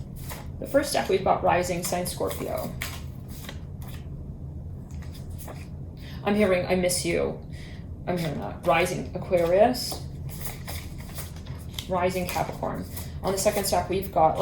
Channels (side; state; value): both; identical; correlation 1.00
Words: The first stack we've got rising sign Scorpio. I'm hearing I miss you. I'm hearing that. Rising Aquarius. Rising Capricorn. On the second stack we've got,